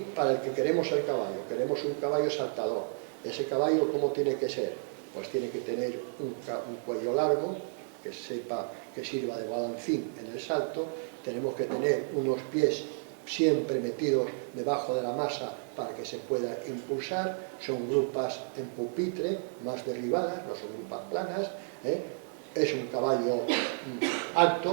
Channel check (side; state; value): left; silent; 57 dB below the other